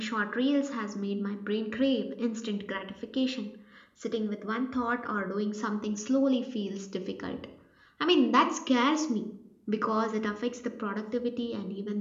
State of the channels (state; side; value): identical; both; correlation 1.00